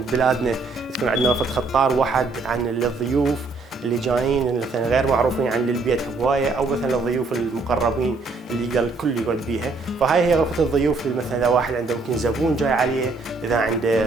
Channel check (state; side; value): quieter; left; 3.7 dB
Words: بلادنا تكون عندنا وفد خطار واحد عن الضيوف اللي جايين مثلا غير معروفين عن البيت هوايه، او مثلا الضيوف المقربين اللي يقدر الكل يقعد بيها. فهاي هي غرفه الضيوف، مثلا اذا واحد عنده ممكن زبون جاي عليه، اذا